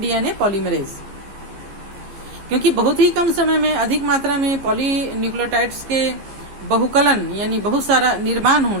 polymerase. क्योंकि बहुत ही कम समय में अधिक मात्रा में पॉलीन्यूक्लियोटाइड्स के बहुकलन यानी बहुत सारा निर्माण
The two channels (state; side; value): late; left; 15 ms